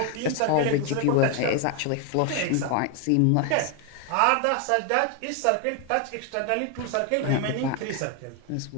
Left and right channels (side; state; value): both; different; correlation 0.01